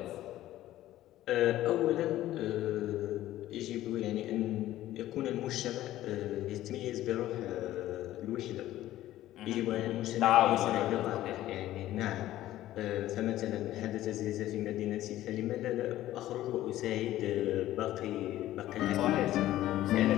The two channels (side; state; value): right; quieter; 14.3 dB